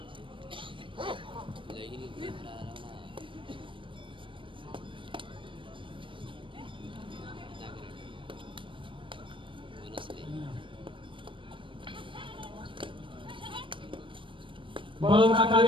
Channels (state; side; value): late; left; 0.25 ms